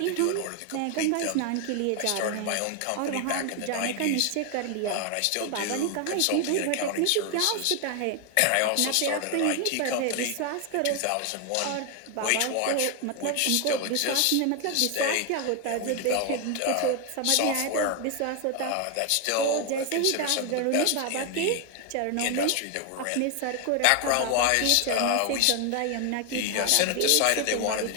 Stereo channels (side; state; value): both; different; correlation 0.00